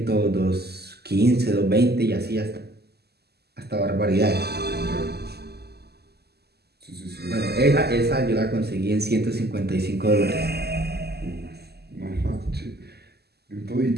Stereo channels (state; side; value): late; left; 0.47 ms